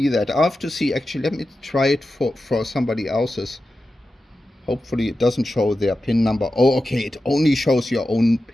that. I'll have to see, actually, let me try it for somebody else's. Hopefully it doesn't show their PIN number. Oh, okay, it only shows your own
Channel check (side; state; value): both; normal; correlation 0.92